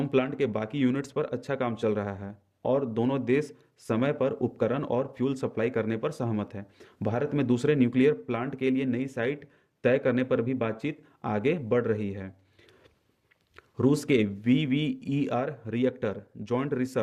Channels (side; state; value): both; identical; correlation 1.00